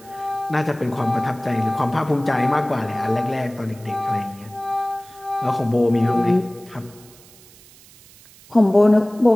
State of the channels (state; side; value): noise; right; hiss, 24 dB below the sound